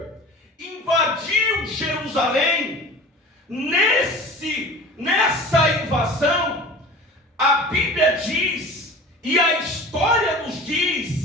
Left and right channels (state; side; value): normal; both; correlation 0.39